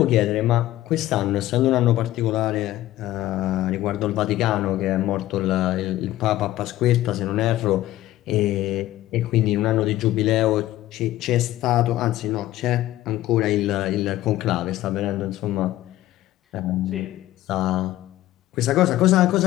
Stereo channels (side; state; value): right; quieter; 15.1 dB